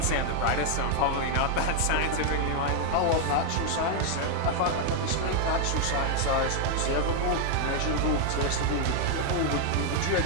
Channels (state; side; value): different; both; correlation 0.00